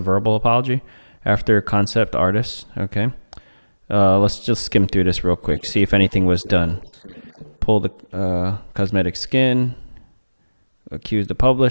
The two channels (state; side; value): inverted; both; correlation -1.00